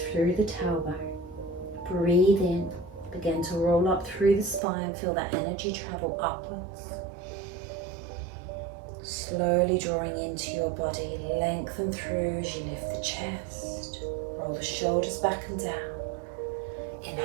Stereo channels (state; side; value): drops out; left; at 4.6 s